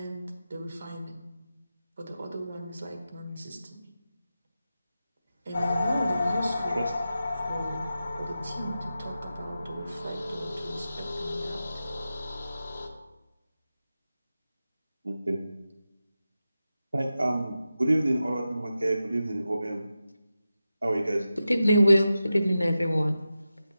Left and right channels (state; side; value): inverted; both; correlation -0.92